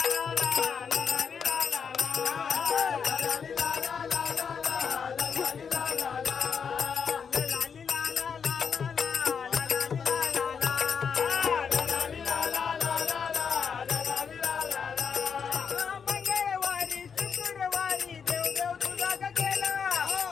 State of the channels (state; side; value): quieter; right; 6.5 dB